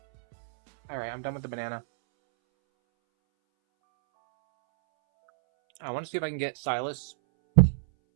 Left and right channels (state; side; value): silent; left; 59 dB below the other